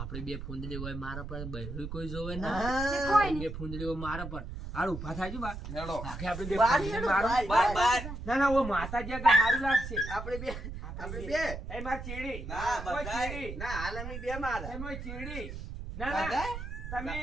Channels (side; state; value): right; noise; rumble, 8 dB below the sound